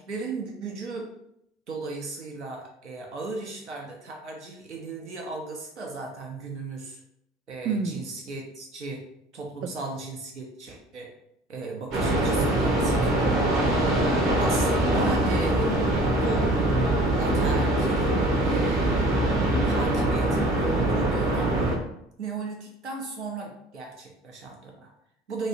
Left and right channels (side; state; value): both; normal; correlation 0.48